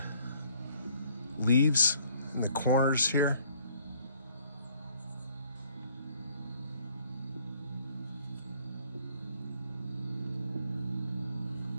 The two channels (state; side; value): inverted; both; correlation -0.62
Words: leaves in the corners here.